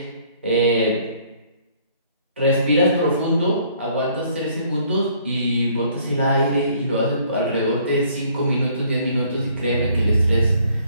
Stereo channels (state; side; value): inverted; both; correlation -0.61